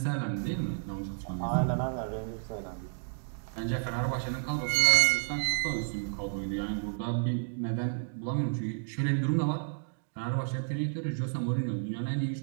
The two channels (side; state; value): left; silent; digital silence